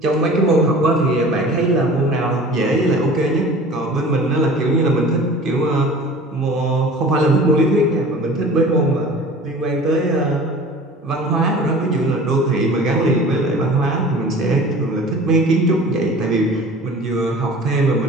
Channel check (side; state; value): both; normal; correlation 0.43